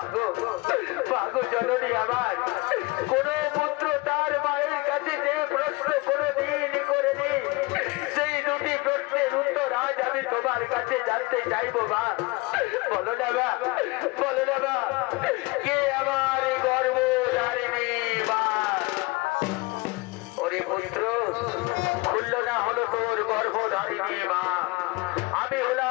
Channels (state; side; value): quieter; right; 24.4 dB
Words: মাগো জননী আমার, কোন পুত্র তার মায়ের কাছে যে প্রশ্ন কোনদিন করেনি, সেই দুটি প্রশ্নের উত্তর আজ আমি তোমার কাছে জানতে চাইবো মা। বলো না মা, বলো না মা, কে আমার গর্ভধারিণী মা? ওরে পুত্র, খুলল না হলো তোর গর্ভধারিণী মা, আমি